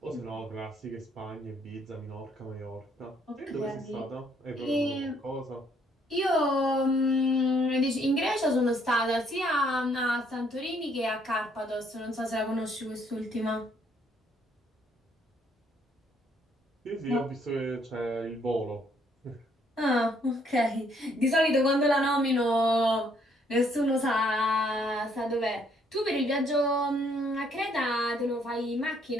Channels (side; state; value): both; normal; correlation 0.67